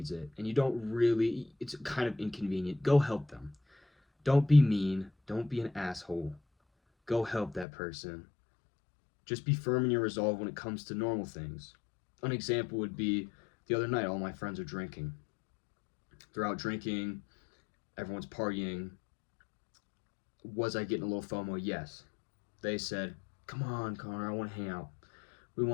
it, and you don't really, it's kind of inconvenient, go help them. Don't be mean. Don't be an asshole. Go help that person. Just be firm in your resolve when it comes to normal things. An example would be the other night, all my friends are drinking. They're out drinking, everyone's partying. Was I getting a little FOMO? Yes. They said, come on, Connor, I want to hang out. We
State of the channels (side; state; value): right; drops out; at 7.7 s